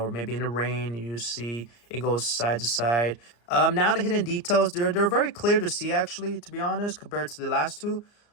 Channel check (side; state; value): right; late; 34 ms